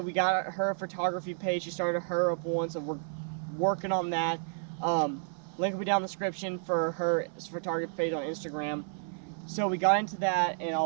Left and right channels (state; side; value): silent; left; 57 dB below the other